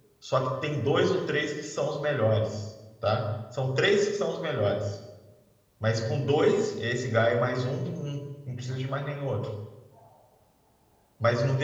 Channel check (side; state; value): both; identical; correlation 1.00